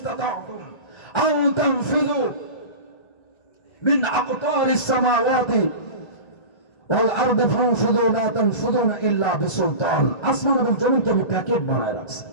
আও তানফিযু মিন আকতারিস সামাওয়াতি ওয়াল আরদি ফানফুযু লা তানফুযুনা ইল্লা বিসুলতান। আসমান এবং জমিনকে আমি প্যাকেট বানায় রাখছি।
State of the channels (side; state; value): right; late; 1.3 ms